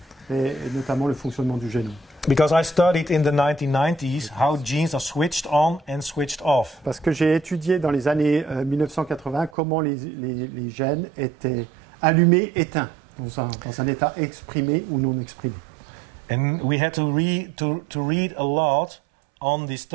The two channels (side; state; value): left; drops out; at 9.5 s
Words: et notamment le fonctionnement du génome. Because I studied in the 1990s how genes are switched on and switched off. Parce que j'ai étudié dans les années 1980 comment les gènes étaient allumés, éteints, dans un état exprimé ou non exprimé. And we had to read a lot on this